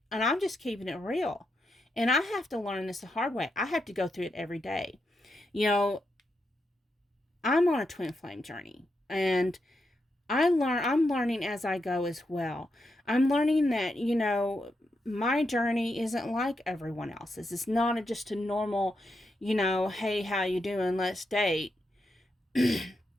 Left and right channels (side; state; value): both; normal; correlation 0.84